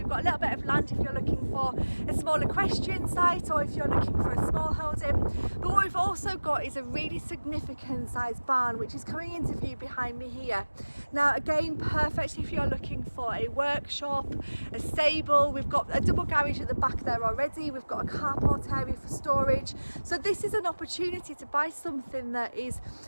got a little bit of land if you're looking for a small equestrian site or if you're looking for a small holding. But what we've also got is a really significant sized barn which is coming into view behind me here. Now again, perfect if you're looking for a workshop, a stable. We've got a double garage at the back there already, we've got a carport area for storage. So this is an opportunity to buy something that is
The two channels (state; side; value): inverted; both; correlation -1.00